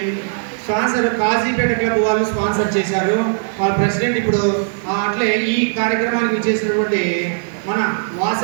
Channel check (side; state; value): left; silent; digital silence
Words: స్పాన్సర్ కాజీపేట క్లబ్ వాళ్ళు స్పాన్సర్ చేశారు. వాళ్ళ ప్రెసిడెంట్ ఇప్పుడు అట్లే ఈ కార్యక్రమానికి చేసినటువంటి మన